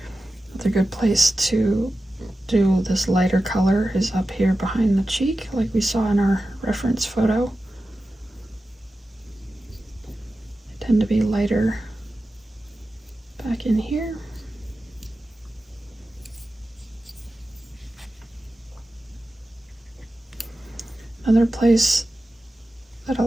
A good place to do this lighter color is up here behind the cheek, like we saw in our reference photo. They tend to be lighter back in here. Another place that a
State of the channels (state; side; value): normal; both; correlation 0.93